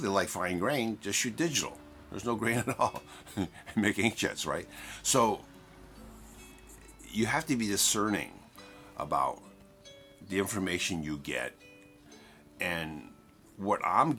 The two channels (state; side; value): identical; both; correlation 1.00